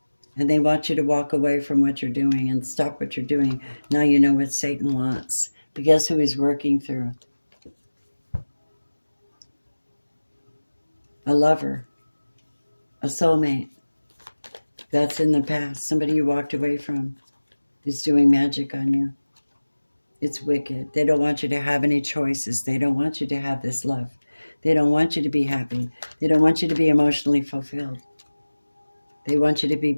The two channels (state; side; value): inverted; both; correlation -1.00